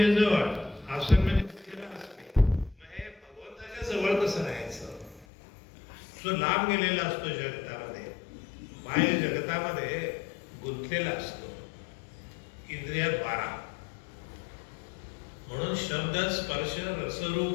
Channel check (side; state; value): right; drops out; at 5.2 s